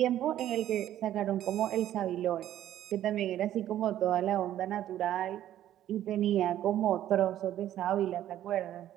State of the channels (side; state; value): left; quieter; 12.2 dB